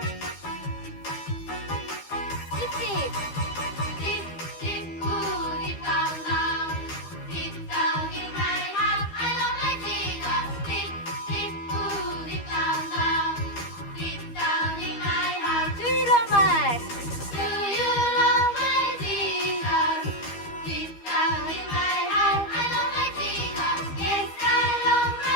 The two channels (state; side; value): late; right; 12 ms